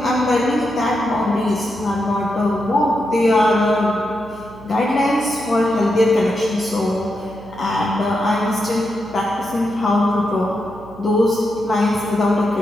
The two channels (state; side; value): noise; right; hum, 19 dB below the sound